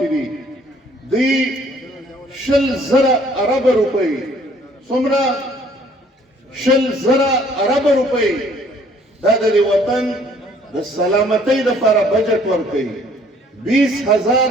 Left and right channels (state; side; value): normal; both; correlation 0.59